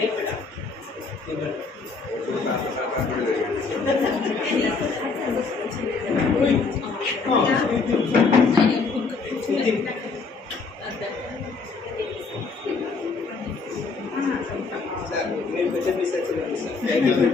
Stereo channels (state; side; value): quieter; right; 4.4 dB